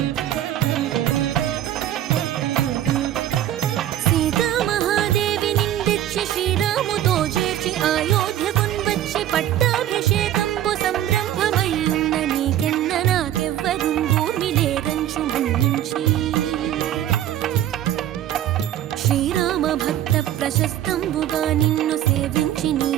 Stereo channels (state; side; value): quieter; left; 11.8 dB